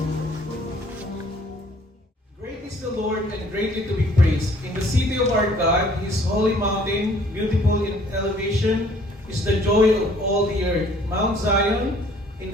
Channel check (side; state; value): both; normal; correlation 0.58